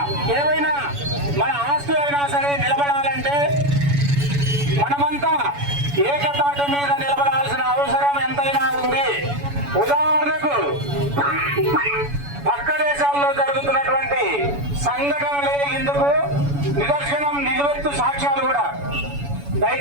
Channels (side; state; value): left; late; 7.0 ms